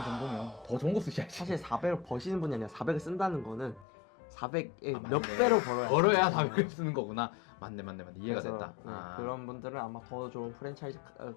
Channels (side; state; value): right; drops out; at 3.9 s